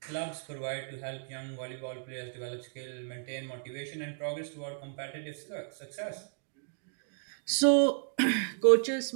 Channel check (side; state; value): left; silent; digital silence